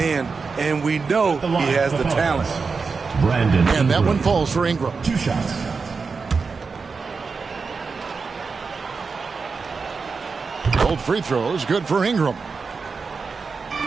and we know he has the talent. And that one falls for Ingram. 2 shots. Both free throws good for Ingram.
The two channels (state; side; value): quieter; left; 4.8 dB